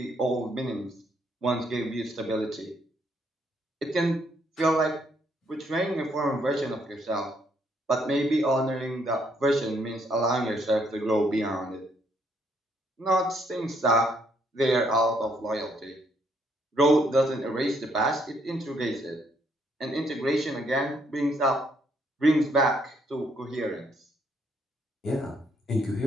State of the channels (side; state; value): both; normal; correlation 0.71